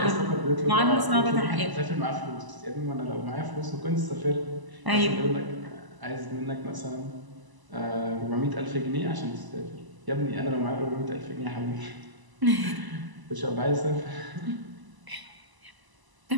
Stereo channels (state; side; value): late; left; 1.0 ms